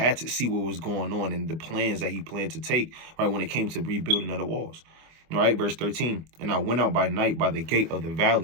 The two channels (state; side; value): late; left; 25 ms